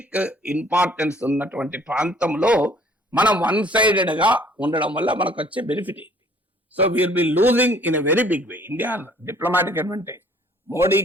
ఇంపార్టెన్స్ ఉన్నటువంటి ప్రాంతంలో మనం వన్ సైడెడ్ గా ఉండడం వల్ల మనకు వచ్చే బెనిఫిట్ ఏంటి? So will be losing in a very big way India diplomatic advantage.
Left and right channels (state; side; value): normal; both; correlation 0.57